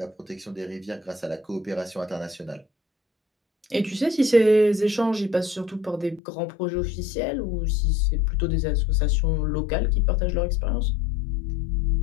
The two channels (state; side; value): drops out; right; at 6.2 s